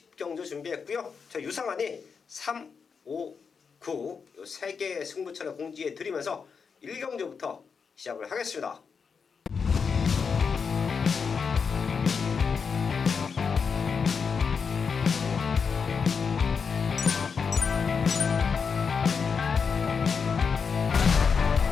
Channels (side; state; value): right; quieter; 5.8 dB